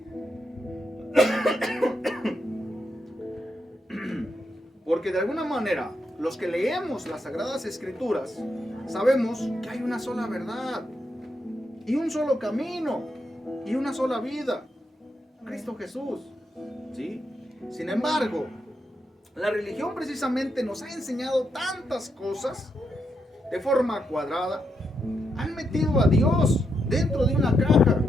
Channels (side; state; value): both; normal; correlation 0.82